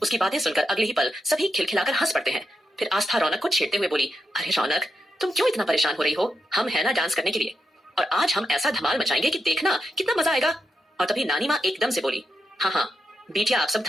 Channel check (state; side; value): normal; both; correlation 0.85